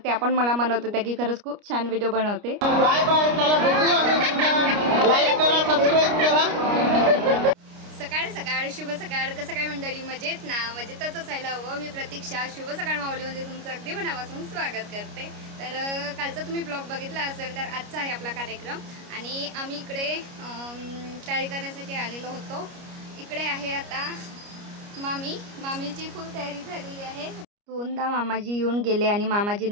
त्या पण मला म्हणत होत्या की खरंच खूप छान व्हिडिओ बनवते. बाय बाय, चला भेटू आम्ही. लाईक करा, सबस्क्राईब करा. सकाळ सकाळ, शुभ सकाळ. कसं काय मंडळी, मजेत ना? मजेतच असायला हवं. मी प्रतीक्षा शुभ सकाळ माऊलीमध्ये तुमचं अगदी मनापासून स्वागत करते. तर कालचा तुम्ही ब्लॉग बघितला असेल तर आजचा आहे आपला कार्यक्रम आणि आम्ही इकडे तयारी करण्यासाठी आलेलो होतो. इकडे आहे आता मामीची फुल तयारी झालेली आहे. दोनदा मामाजी येऊन गेले आणि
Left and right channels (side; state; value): left; late; 29 ms